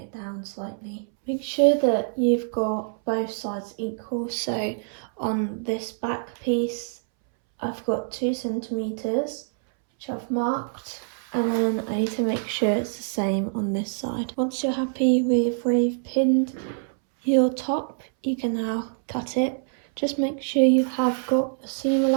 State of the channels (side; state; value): left; silent; 62 dB below the other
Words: down slightly. Make sure that you've got both sides equal. So on this back piece, I've got 2 centimetres, which I've marked, and then I need to make sure it's the same on this side. Once you're happy with where you've pinned your top, you can now cut it. Just make sure you have got a seam